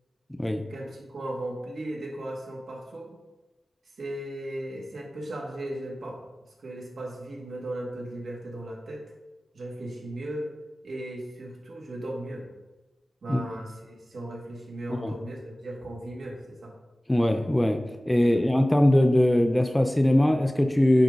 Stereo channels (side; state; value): both; normal; correlation 0.98